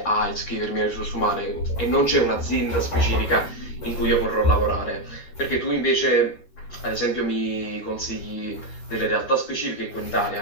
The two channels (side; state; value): right; late; 13 ms